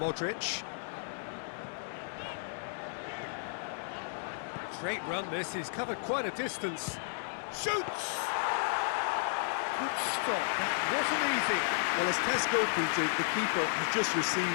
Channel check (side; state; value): right; silent; digital silence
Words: Great run this, he's covered quite a distance. Shoots! Good stop, that wasn't easy. Well, as Tesco printed, the keeper has just